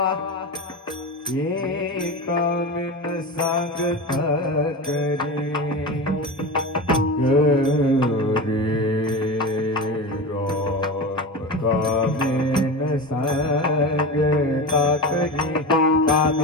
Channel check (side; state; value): both; normal; correlation 0.25